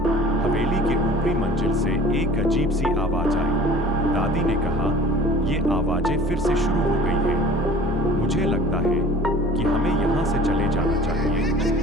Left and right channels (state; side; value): normal; both; correlation 0.45